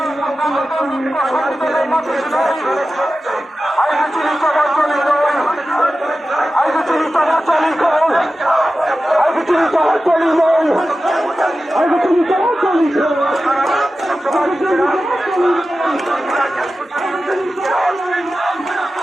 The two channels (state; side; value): normal; both; correlation 0.94